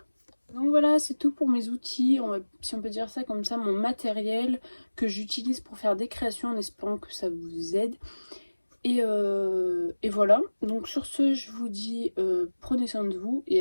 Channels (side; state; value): both; inverted; correlation -1.00